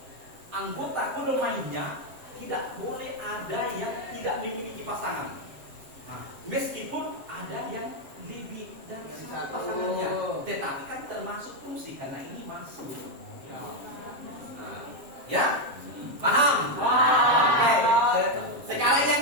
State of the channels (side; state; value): left; late; 7.5 ms